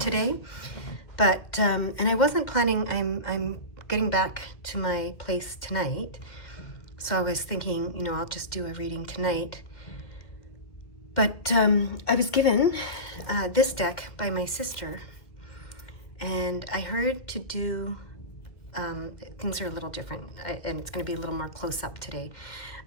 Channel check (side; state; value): right; late; 2.2 ms